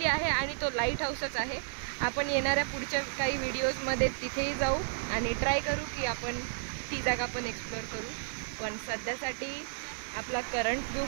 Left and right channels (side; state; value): left; silent; digital silence